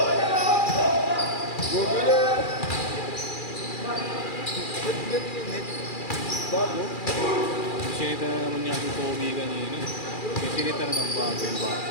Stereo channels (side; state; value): right; late; 2.4 ms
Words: Google na. Ba't ganun yung net? Bago? Sinita na naman niya yung Pogi kanina. Sinita na ng bago yung bago.